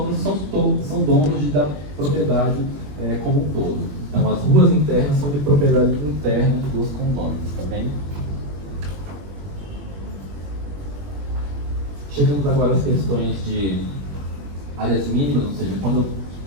são donos da propriedade como um todo. Então, as ruas internas são de propriedade interna dos condôminos, tá bem? Chegamos agora às questões de áreas mínimas, ou seja,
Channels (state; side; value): late; left; 21 ms